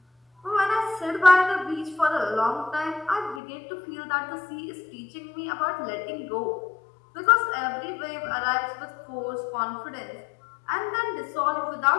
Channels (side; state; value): right; drops out; at 3.4 s